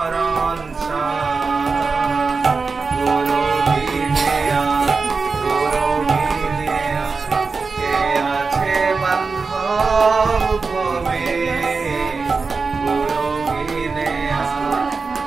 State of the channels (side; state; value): left; quieter; 4.5 dB